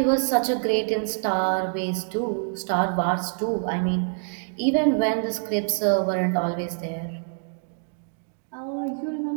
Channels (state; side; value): silent; left; 61 dB below the other